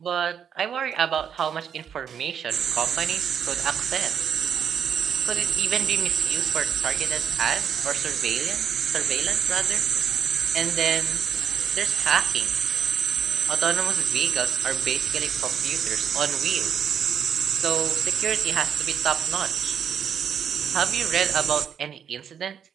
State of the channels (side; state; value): left; quieter; 8.1 dB